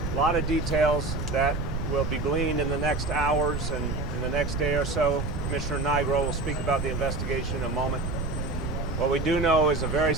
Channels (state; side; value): noise; right; rumble, 3 dB below the sound